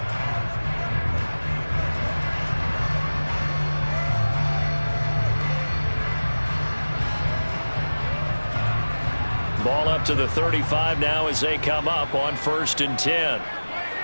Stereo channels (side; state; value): both; inverted; correlation -1.00